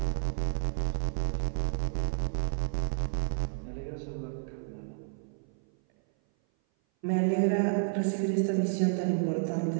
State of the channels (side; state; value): left; silent; 56 dB below the other